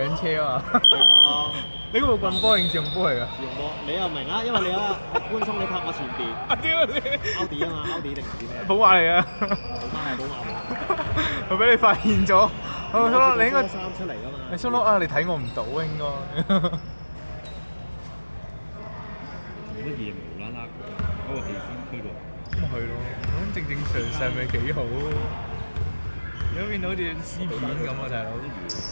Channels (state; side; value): inverted; both; correlation -1.00